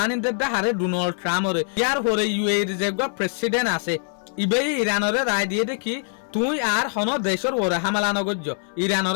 ইন দ্য হারে ডোনাল্ড ট্রাম্পরে ইয়ার হরে ইউএইর যে প্রেসিডেন্ট আছে ইবেই ইরানরে রায় দিয়ে দেখি তুই আর হন দেশের ওরে হামলা নগর্য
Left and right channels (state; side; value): silent; right; digital silence